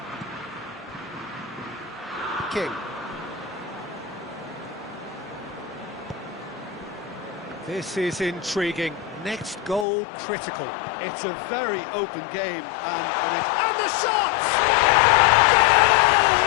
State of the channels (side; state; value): right; drops out; at 9.9 s